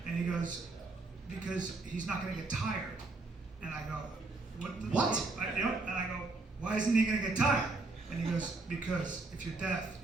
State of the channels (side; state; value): left; quieter; 3.4 dB